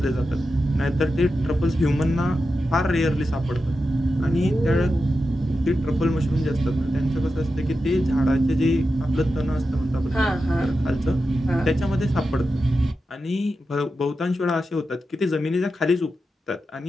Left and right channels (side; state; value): both; normal; correlation 0.90